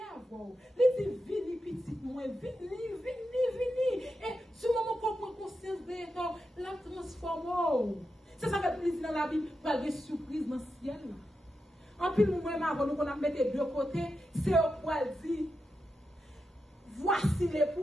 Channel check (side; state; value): both; normal; correlation 0.88